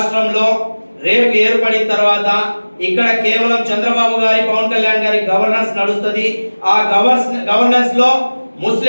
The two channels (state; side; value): inverted; both; correlation -1.00